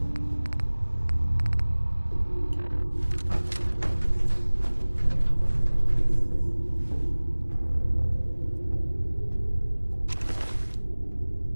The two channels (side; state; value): both; inverted; correlation -1.00